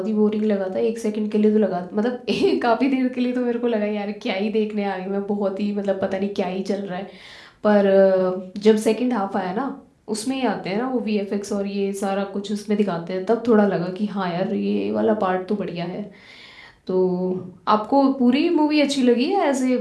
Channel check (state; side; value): identical; both; correlation 1.00